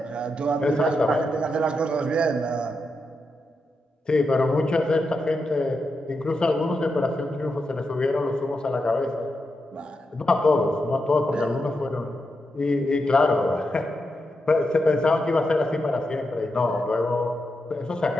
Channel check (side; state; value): both; normal; correlation 0.86